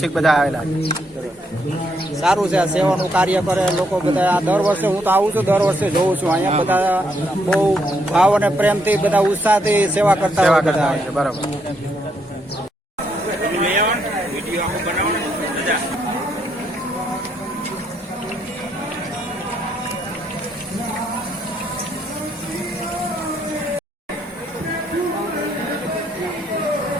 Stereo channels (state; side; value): normal; both; correlation 0.75